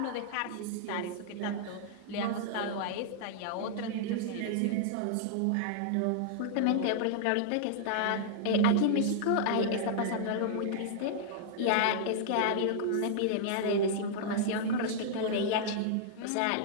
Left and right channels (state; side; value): different; both; correlation -0.01